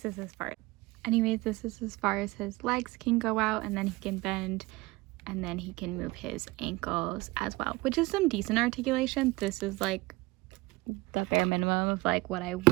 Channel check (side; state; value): left; quieter; 22.2 dB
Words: is as far. Anyways, this is as far as his legs can go out, and then he can bend, and then he can move his ankles as well, which is some decent articulation. This is like the bare minimum of like what I